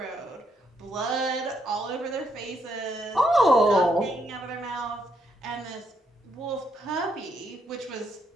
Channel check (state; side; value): normal; both; correlation 0.76